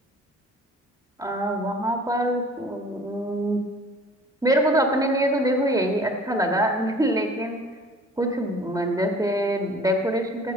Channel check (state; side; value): normal; both; correlation 0.49